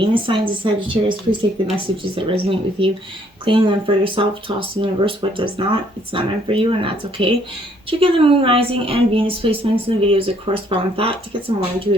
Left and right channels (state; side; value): normal; both; correlation 0.65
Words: signs of Sagittarius. Please take the messages that resonate with you, claim them for yourself, toss the universe what does not. It's not meant for you, and that's okay. Check out the Moon, Rising, and Venus placements in the videos that correspond with that to get some more